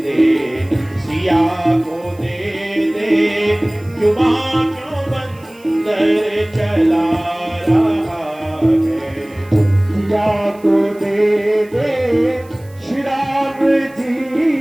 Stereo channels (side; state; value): right; noise; hiss, 28 dB below the sound